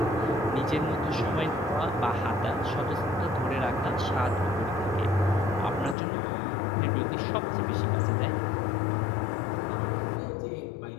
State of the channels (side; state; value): right; drops out; at 6.0 s